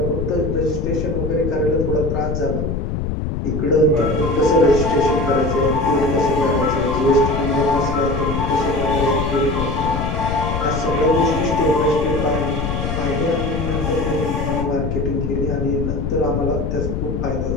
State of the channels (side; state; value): left; noise; rumble, 2 dB below the sound